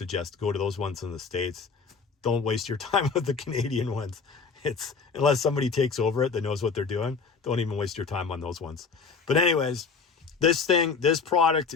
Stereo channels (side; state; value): right; quieter; 5.2 dB